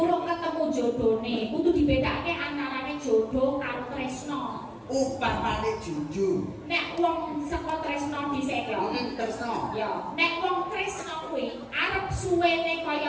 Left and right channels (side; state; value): both; identical; correlation 1.00